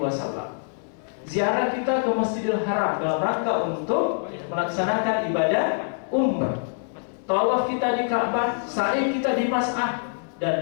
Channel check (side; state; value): right; silent; digital silence